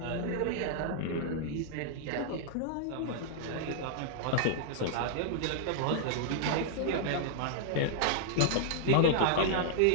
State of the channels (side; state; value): both; different; correlation -0.01